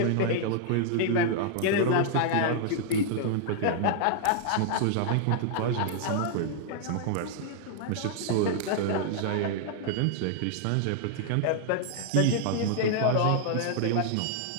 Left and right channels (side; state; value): both; different; correlation 0.00